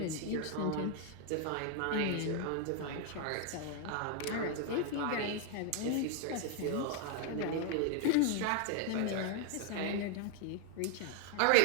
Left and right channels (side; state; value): both; different; correlation 0.01